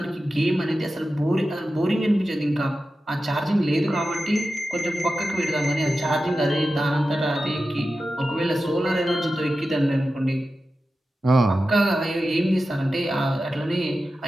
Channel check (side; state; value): both; normal; correlation 0.93